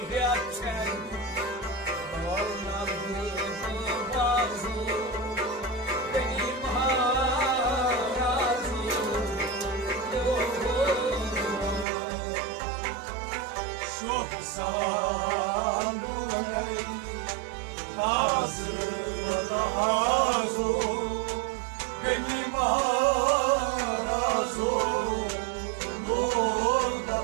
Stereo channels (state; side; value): drops out; left; at 11.9 s